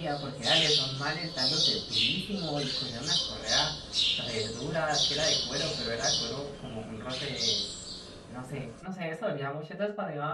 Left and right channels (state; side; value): identical; both; correlation 1.00